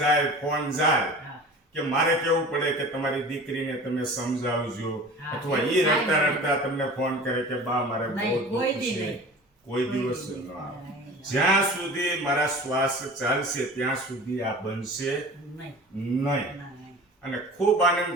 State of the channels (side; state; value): both; normal; correlation 0.39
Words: જાય, ફોન જાય કે મારે કેવું પડે કે તમારી દીકરીને તમે સમજાવજો, અથવા એ રડતા રડતા તમને ફોન કરે કે બા મારે બહુ દુઃખ છે. કોઈ દિવસ ન આવે. જ્યાં સુધી મારા શ્વાસ ચાલશે ત્યાં સુધી આ બનશે નહીં. અને ખૂબ આનંદ